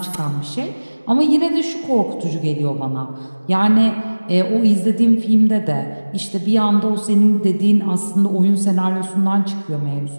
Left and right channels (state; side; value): inverted; both; correlation -1.00